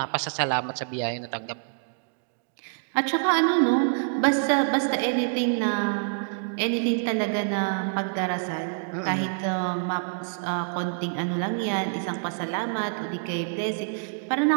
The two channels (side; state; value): left; silent; digital silence